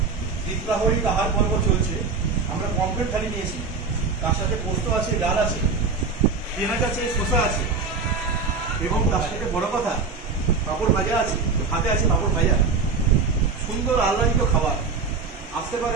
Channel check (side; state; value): left; quieter; 4.7 dB